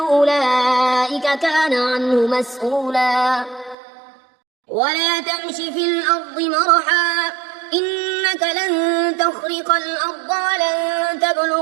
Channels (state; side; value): drops out; left; at 3.8 s